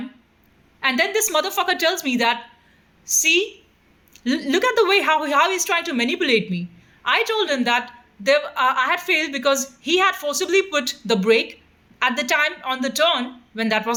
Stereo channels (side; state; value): both; identical; correlation 1.00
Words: And then this motherfucker tells me that, see, look at the way how he's trying to manipulate me. I told him that I had failed because he had forcibly put the brake at the time on the turn when that